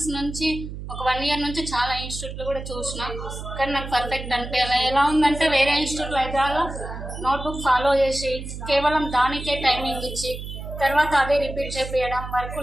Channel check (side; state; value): right; noise; hum, 9 dB below the sound